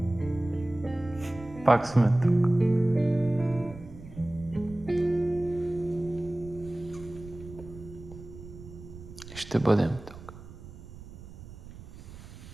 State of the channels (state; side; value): noise; right; rumble, 16 dB below the sound